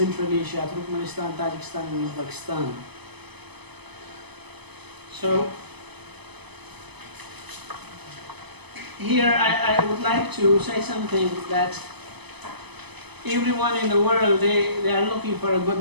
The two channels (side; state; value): left; late; 0.99 ms